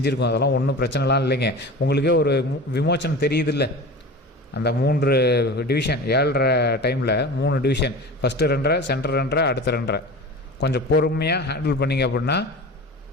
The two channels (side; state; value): both; normal; correlation 0.33